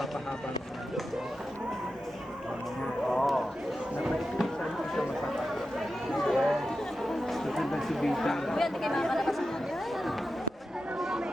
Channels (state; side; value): normal; both; correlation 0.91